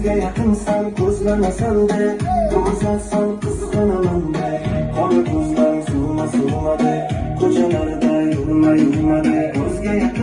yaqinsan ko'zlamasan-da, ko'rsatsan qizg'anaman-da. Qora ko'zlaring surma-surmada, ko'chalarda yurma-yurmada, ko'zga Ko'zga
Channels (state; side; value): identical; both; correlation 1.00